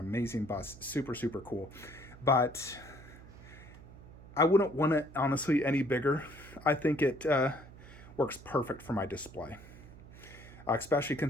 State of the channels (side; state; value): right; noise; hum, 18 dB below the sound